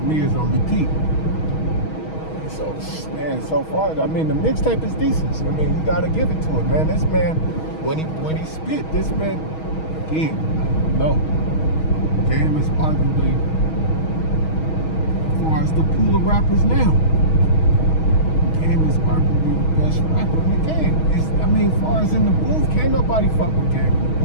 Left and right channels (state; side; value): late; right; 6.3 ms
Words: Me is on repeat. And so, man, so far, I mean, the mixtape is decent. I mean, you gotta give it to it, man. This man, when he spit, this man, again, no. Game is arguably, as far as the pool of rappers now, Game is arguably the best rapper in the game. I mean, as far as in the booth, can't nobody fuck with Game in the